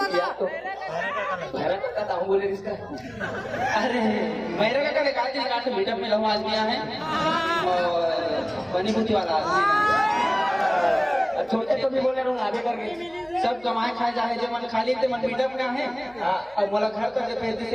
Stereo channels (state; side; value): noise; right; hum, 28 dB below the sound